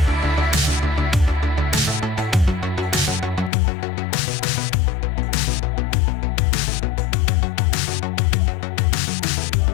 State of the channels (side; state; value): right; drops out; at 3.5 s